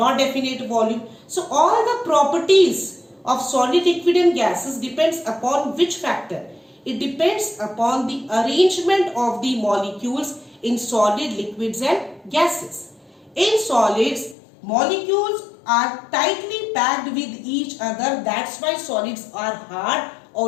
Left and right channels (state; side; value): drops out; right; at 14.4 s